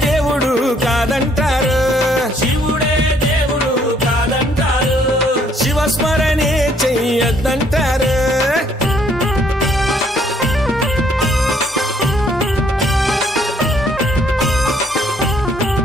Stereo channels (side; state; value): both; normal; correlation 0.65